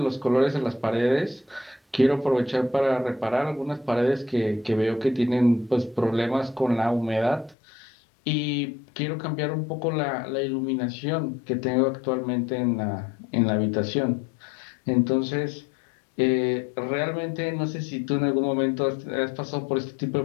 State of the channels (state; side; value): drops out; right; at 7.6 s